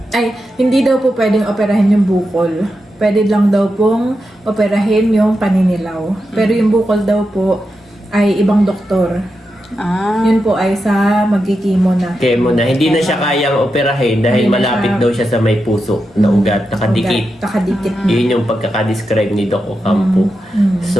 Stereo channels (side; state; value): both; normal; correlation 0.88